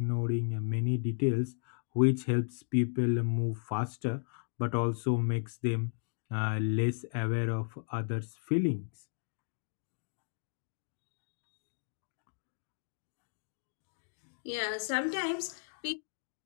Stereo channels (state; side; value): silent; right; digital silence